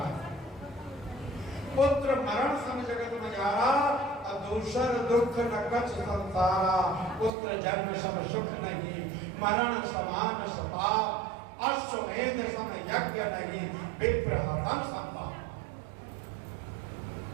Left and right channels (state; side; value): drops out; left; at 7.3 s